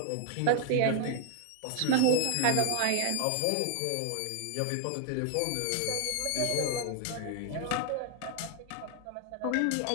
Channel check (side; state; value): both; different; correlation 0.00